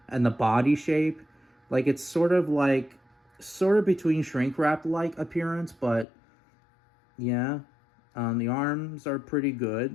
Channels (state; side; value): drops out; right; at 6.1 s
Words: the body shape, like it's sort of between shrink wrap like appearance, but yeah. The arms are pretty